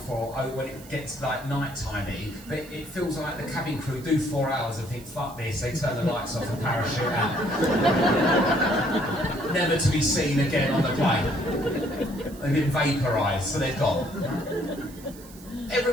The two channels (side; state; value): right; noise; hiss, 20 dB below the sound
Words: when it gets like night-timey, but it feels like the cabin crew do 4 hours and think, fuck this, they turn the lights off and parachute out. Never to be seen again on the plane. They've been vaporised, so they're gone.